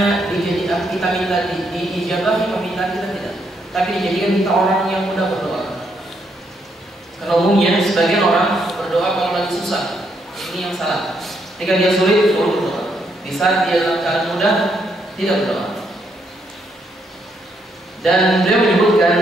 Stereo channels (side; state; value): both; normal; correlation 0.75